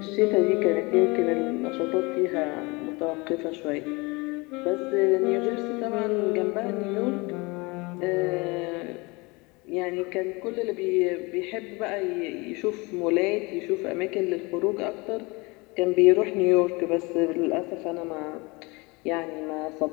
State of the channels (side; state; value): right; quieter; 25.9 dB